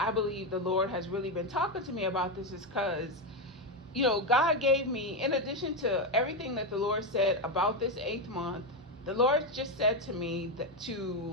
believe the Lord has really been talking to me about this is because, God gave me, in addition to everything that the Lord said about this 8th month, the Lord just said to me that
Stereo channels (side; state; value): both; normal; correlation 0.09